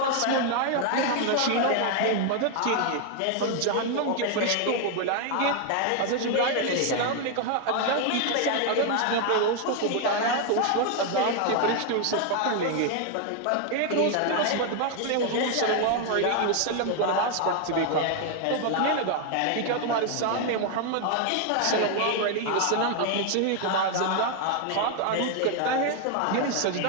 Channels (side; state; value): both; different; correlation 0.00